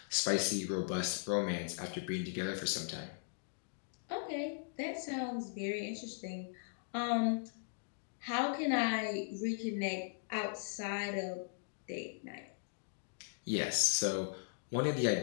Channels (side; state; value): right; silent; digital silence